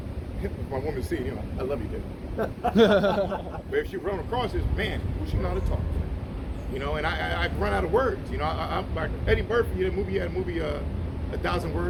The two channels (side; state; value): both; identical; correlation 1.00